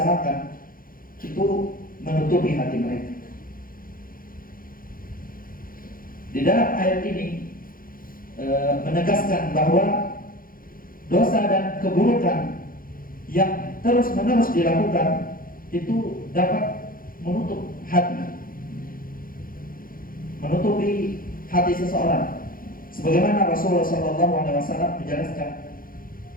itu menutupi hati mereka. Di dalam ayat ini menegaskan bahwa dosa dan keburukan yang terus-menerus dilakukan itu dapat menutup hati, menutupi hati seseorang. Sebagaimana Rasulullah SAW menjelaskan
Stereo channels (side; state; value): right; late; 0.41 ms